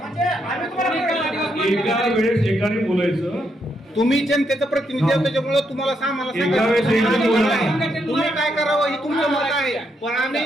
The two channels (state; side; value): normal; both; correlation 0.78